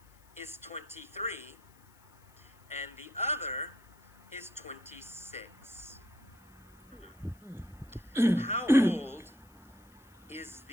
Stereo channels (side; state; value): left; noise; hiss, 29 dB below the sound